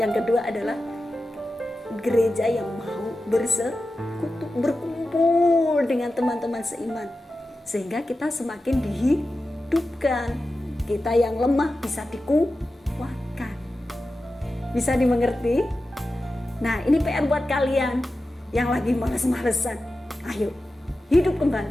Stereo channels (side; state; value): both; normal; correlation 0.93